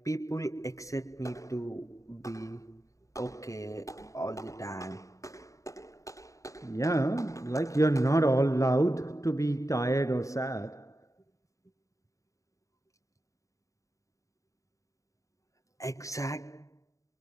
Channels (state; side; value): late; right; 0.16 ms